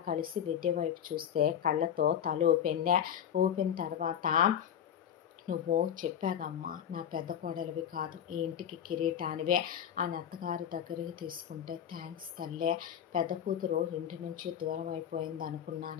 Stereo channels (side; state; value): right; quieter; 9.3 dB